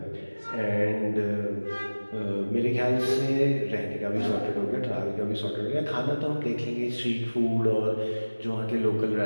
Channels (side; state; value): both; inverted; correlation -1.00